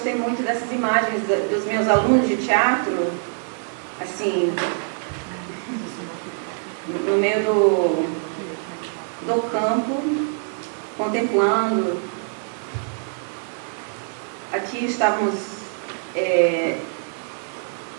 muito dessas imagens dos meus alunos de teatro, assim, no meio do campo, contemplando. Aqui estávamos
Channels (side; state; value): left; silent; 62 dB below the other